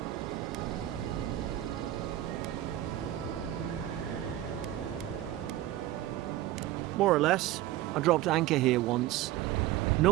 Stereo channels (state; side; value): quieter; left; 14.2 dB